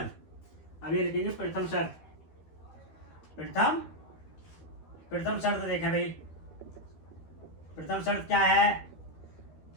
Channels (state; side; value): late; right; 13 ms